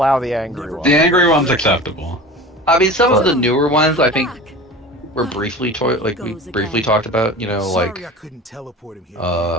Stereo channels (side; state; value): both; normal; correlation 0.36